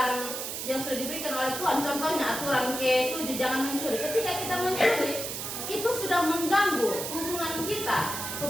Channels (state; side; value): noise; right; hiss, 5 dB below the sound